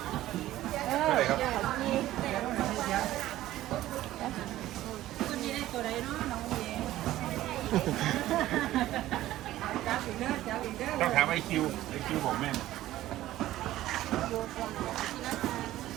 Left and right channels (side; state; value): left; quieter; 14.8 dB